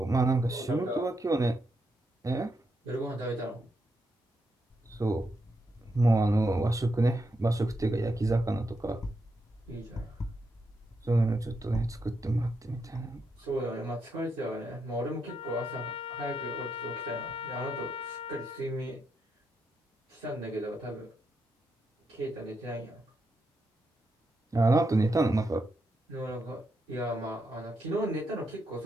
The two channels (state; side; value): normal; both; correlation 0.82